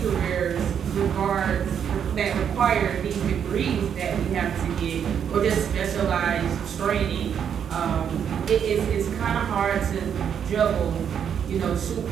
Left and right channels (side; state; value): left; quieter; 8.2 dB